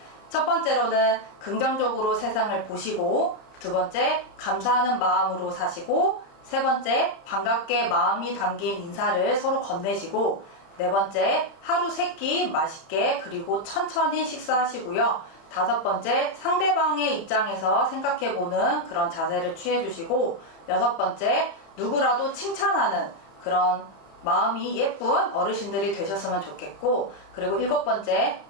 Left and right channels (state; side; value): late; right; 31 ms